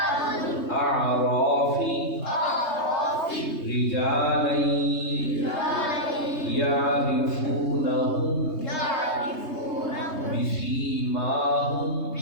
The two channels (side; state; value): right; late; 3.2 ms